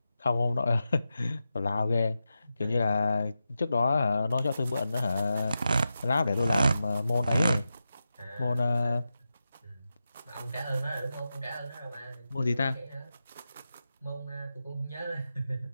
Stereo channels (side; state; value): both; inverted; correlation -0.90